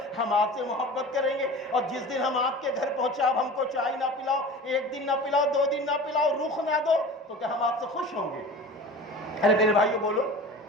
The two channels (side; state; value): both; normal; correlation 0.37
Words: ہم آپ سے محبت کریں گے۔ اور جس دن ہم آپ کے گھر پہنچے آپ ہم کو چائے نہ پلاؤ، ایک دن نہ پلاؤ، 2 دن نہ پلاؤ، رخ نہ دو، تو کیا ہم آپ سے خوش ہوں گے؟ ارے میرے بھائیو بولو،